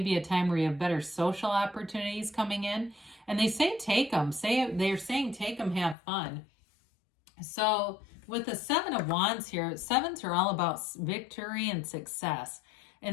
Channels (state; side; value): drops out; right; at 6.0 s